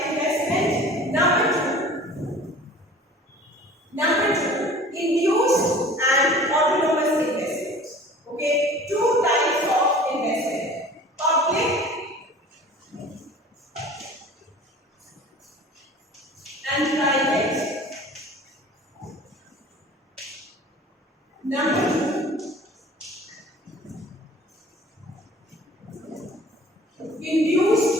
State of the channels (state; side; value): normal; both; correlation 0.45